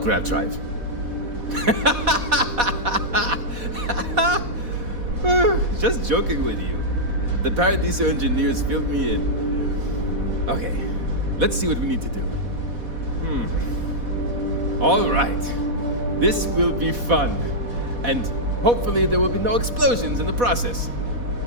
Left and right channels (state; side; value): late; left; 4.1 ms